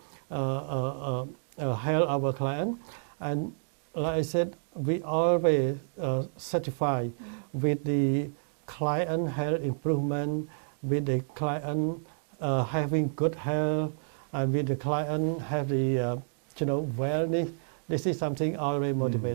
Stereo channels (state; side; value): silent; left; digital silence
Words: help our client. And like I said, we always certify with the client health improvement, with the client having good health, and with the client have the wellness. This is something always